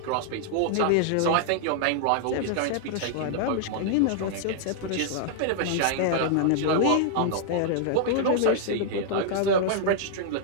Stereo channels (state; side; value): different; both; correlation -0.01